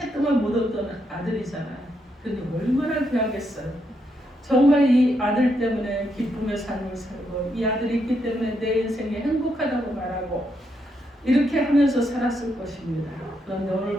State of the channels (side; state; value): both; normal; correlation 0.79